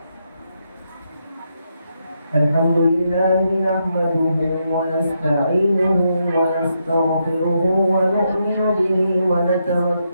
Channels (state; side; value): inverted; both; correlation -0.81